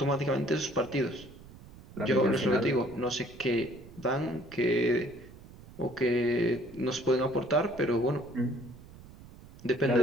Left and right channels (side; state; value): right; noise; rumble, 19 dB below the sound